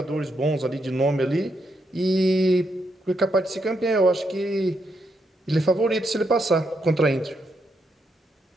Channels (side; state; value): both; normal; correlation 0.80